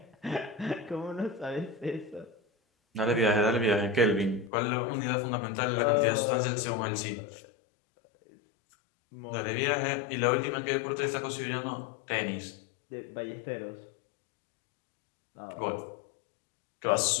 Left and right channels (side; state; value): right; drops out; at 4.5 s